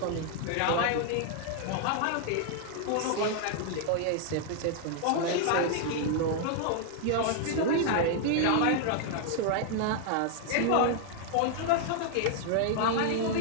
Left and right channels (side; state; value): both; different; correlation 0.00